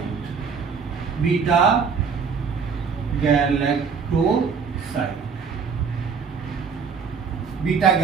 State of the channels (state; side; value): quieter; left; 5.8 dB